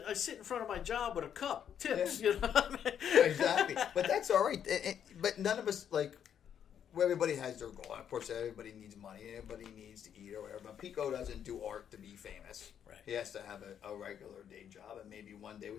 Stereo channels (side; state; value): right; quieter; 8.9 dB